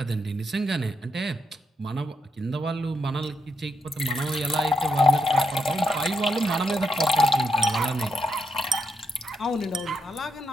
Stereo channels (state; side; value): normal; both; correlation 0.81